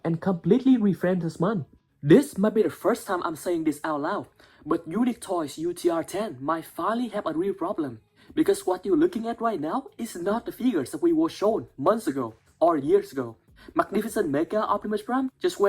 and completely reframed this month. This might be the first time I'm saying this out loud, but Unique Toys UTR-10 might finally have a real problem, because what you're looking at right now is not the figures that we were shown months ago or years ago. Magnificent Mega Optimus Prime just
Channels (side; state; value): both; identical; correlation 1.00